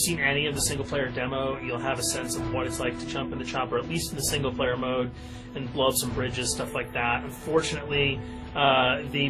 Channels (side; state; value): both; identical; correlation 1.00